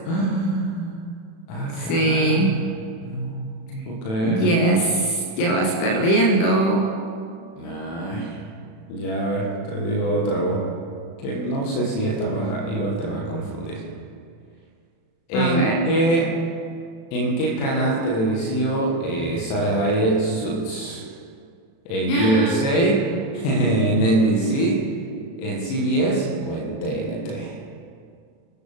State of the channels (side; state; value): right; late; 36 ms